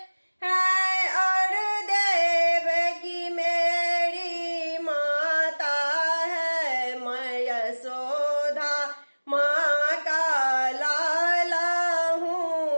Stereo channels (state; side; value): inverted; both; correlation -1.00